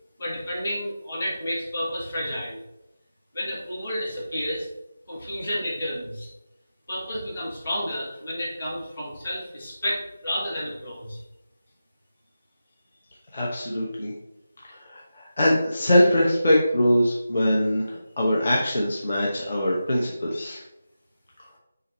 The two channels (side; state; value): both; inverted; correlation -0.90